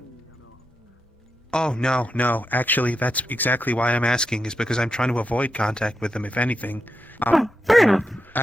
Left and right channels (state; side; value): normal; both; correlation 0.86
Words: Oh, no. Actually, that's exactly why I'm asking, is because I'm trying to avoid contact with them, if anything. Fair enough.